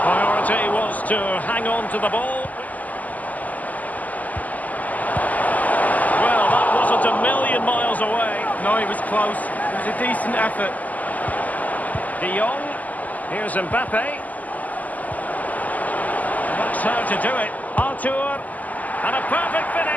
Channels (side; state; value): right; late; 0.078 ms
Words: Priority was to hang on to the ball. Well, that wasn't a million miles away. No, it was close. It was a decent effort. De Jong. Here's Mbappe. That's how to do it. Artur. And a perfect